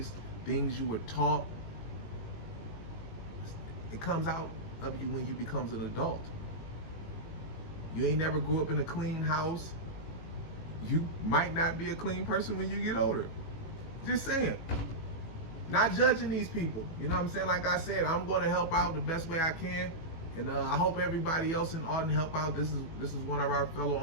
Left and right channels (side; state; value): right; late; 18 ms